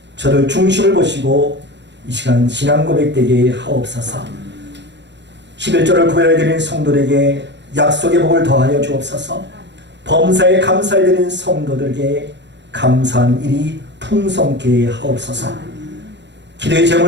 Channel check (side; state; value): left; late; 0.51 ms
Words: 저를 중심을 보시고 이 시간 신앙 고백되게 하옵소서. 11조를 구별해드린 성도들에게 약속의 복을 더하여 주옵소서. 범사에 감사해드린 성도들에게 감사한 일이 풍성케 하옵소서. 기도의